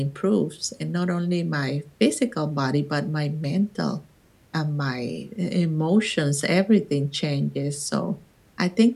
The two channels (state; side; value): identical; both; correlation 1.00